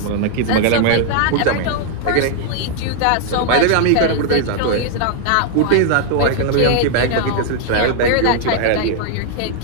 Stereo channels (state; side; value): different; both; correlation 0.00